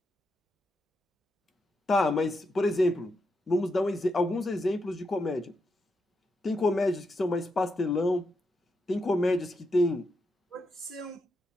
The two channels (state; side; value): normal; both; correlation 0.84